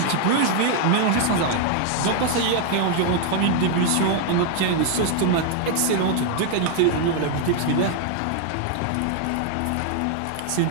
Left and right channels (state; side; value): different; both; correlation 0.00